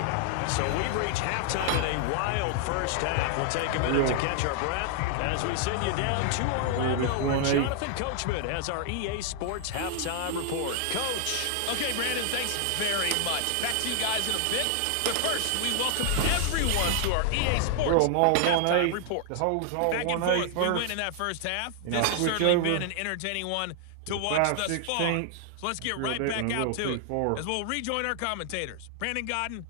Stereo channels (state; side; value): different; both; correlation 0.00